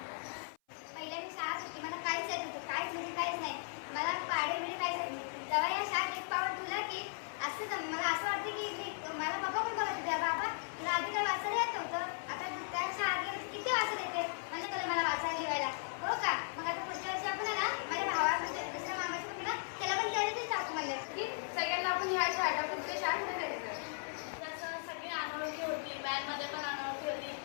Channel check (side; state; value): right; silent; 53 dB below the other